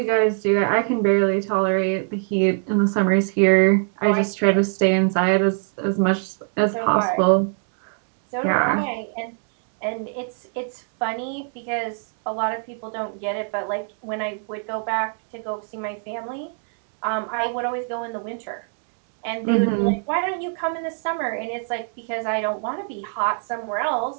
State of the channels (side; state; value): left; silent; 63 dB below the other